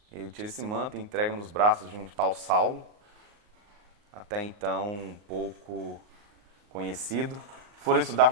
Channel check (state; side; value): late; left; 39 ms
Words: Ele tira esse manto e entrega nos braços de um tal Saulo, até então um pouco conhecido. Foram estudar